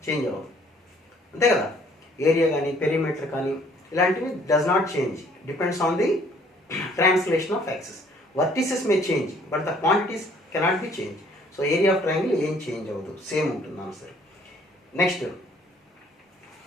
చేంజ్ అవ్వదు, అంతే కదా. ఏరియా కానీ పెరిమీటర్ కానీ ఇలాంటివి does not change, depends on the translation of access. Vertices May change but the quantities cannot be change. So area of triangle ఏం చేంజ్ అవ్వదు, సేమ్ ఉంటుంది answer.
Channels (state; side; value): normal; both; correlation 0.60